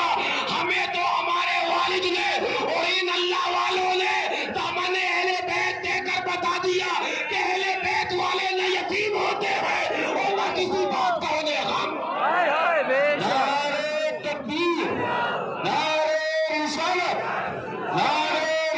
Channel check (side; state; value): both; identical; correlation 1.00